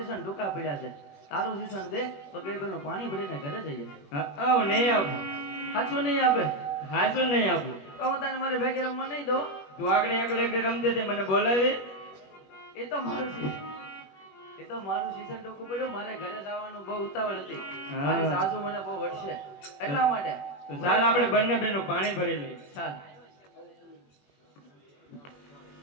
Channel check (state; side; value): late; right; 21 ms